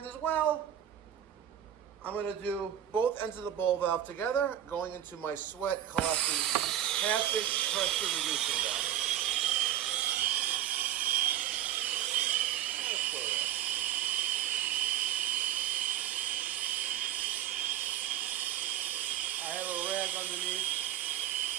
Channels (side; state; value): left; quieter; 11.1 dB